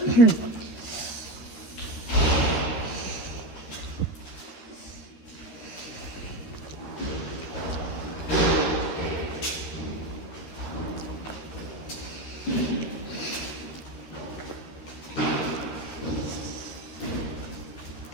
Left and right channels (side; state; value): right; late; 13 ms